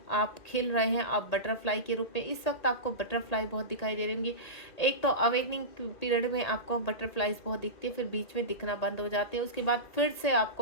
आप खिल रहे हैं, आप बटरफ्लाई के रूप में इस वक्त आपको बटरफ्लाई बहुत दिखाई दे रहे होंगे। एक तो अवेकनिंग पीरियड में आपको बटरफ्लाईज बहुत दिखती है, फिर बीच में दिखना बंद हो जाती है, उसके बाद फिर से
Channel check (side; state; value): right; late; 1.8 ms